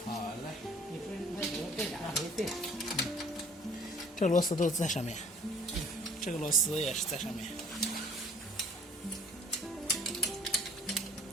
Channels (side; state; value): both; normal; correlation 0.53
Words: 好嘞，这螺丝都在上面，这个螺丝也是在上面。